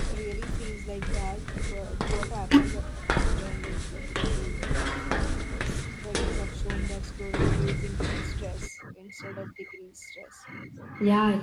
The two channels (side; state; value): both; identical; correlation 1.00